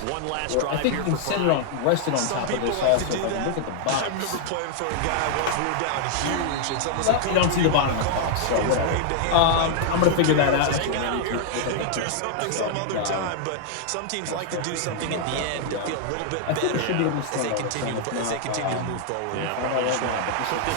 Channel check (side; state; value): both; different; correlation 0.00